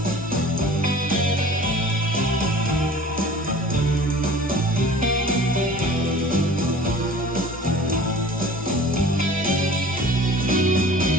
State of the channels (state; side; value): normal; both; correlation 0.45